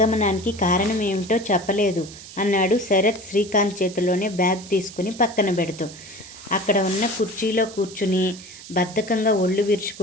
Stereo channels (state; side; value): noise; right; hiss, 16 dB below the sound